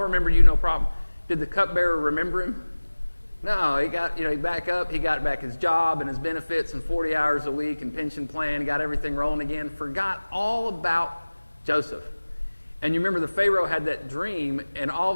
remember you, no problem. Did the cupbearer remember him? No, he got, he back up. He got back his job and his benefits and 40 hours a week and pension plan, got everything rolling again, forgot all about Joseph. And you remember the Pharaoh had that dream, and all of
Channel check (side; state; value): both; inverted; correlation -1.00